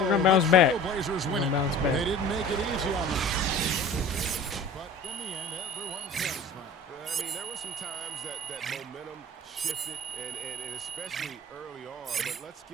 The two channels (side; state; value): both; normal; correlation 0.42